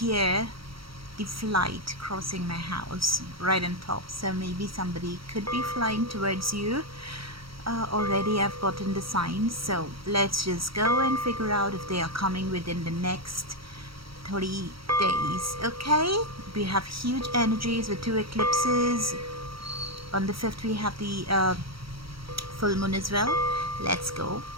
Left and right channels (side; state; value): left; late; 0.75 ms